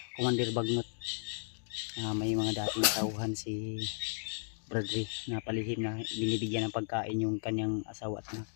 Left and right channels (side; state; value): right; silent; digital silence